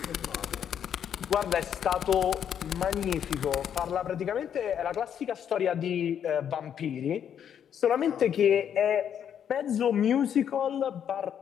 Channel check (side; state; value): right; quieter; 8.8 dB